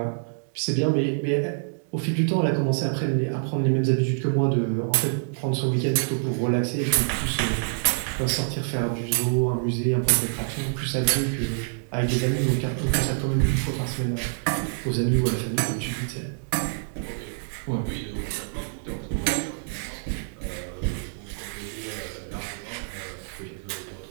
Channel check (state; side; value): silent; left; digital silence